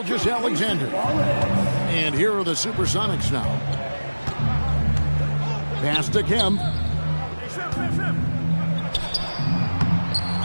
And here are the Supersonics now. Pass to Kemp.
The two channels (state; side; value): inverted; both; correlation -1.00